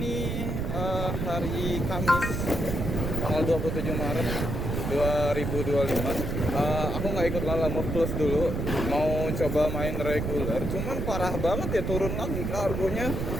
hari Kamis tanggal 27 Maret 2025. Aku nggak ikut Lala Move Plus dulu, mau coba main reguler. Cuman parah banget ya, turun lagi kargonya.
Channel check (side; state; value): right; noise; rumble, 2 dB below the sound